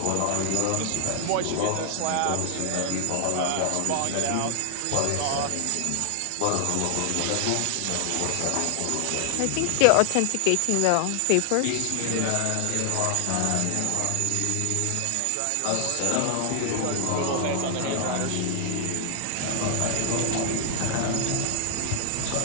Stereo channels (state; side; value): different; both; correlation 0.00